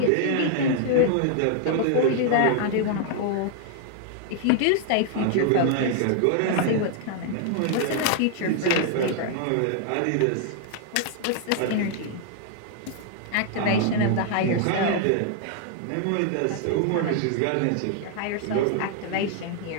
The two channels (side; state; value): both; different; correlation 0.00